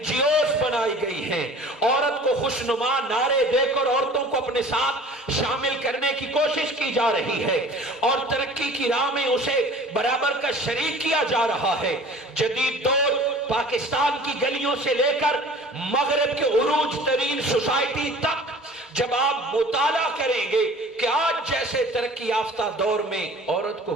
جی اوز بنائی گئی ہیں، عورت کو خوشنما نعرے دے کر عورتوں کو اپنے ساتھ شامل کرنے کی کوشش کی جا رہی ہے اور ترقی کی راہ میں اسے برابر کا شریک کیا جا رہا ہے۔ جدید دور پاکستان کی گلیوں سے لے کر مغرب کے عروج ترین سوسائٹی تک جب آپ مطالعہ کریں گے کہ آج جیسے ترقی یافتہ دور میں عورت کو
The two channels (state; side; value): normal; both; correlation 0.45